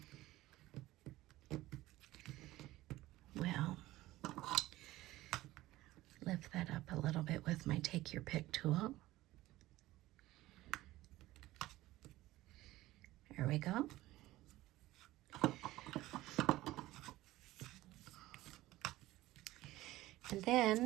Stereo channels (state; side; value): quieter; left; 17.0 dB